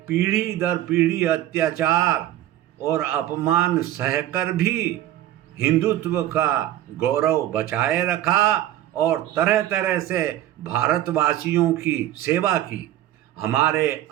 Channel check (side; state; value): left; quieter; 13.2 dB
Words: पीढ़ी दर पीढ़ी अत्याचार और अपमान सहकर भी हिंदुत्व का गौरव बचाए रखा और तरह तरह से भारतवासियों की सेवा की। हमारे